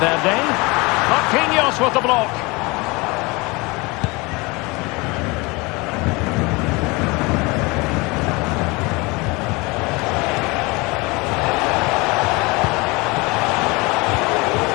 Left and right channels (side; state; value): right; quieter; 25.4 dB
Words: Marquinhos with the block.